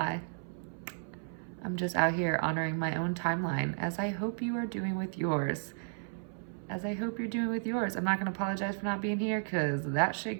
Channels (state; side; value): silent; left; 55 dB below the other